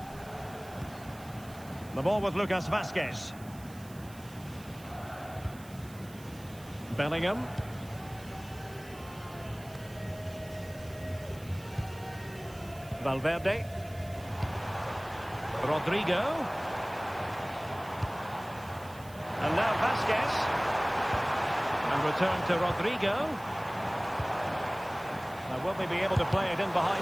The ball with Lucas Vazquez. Bellingham. Valverde. Rodrigo. And now Vazquez. And return to Rodrigo. Now will they be able to play it in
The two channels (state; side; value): noise; right; hiss, 21 dB below the sound